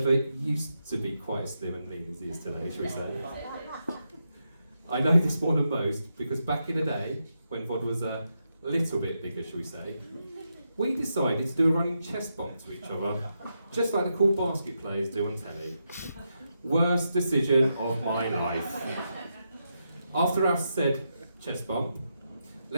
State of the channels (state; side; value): inverted; both; correlation -0.84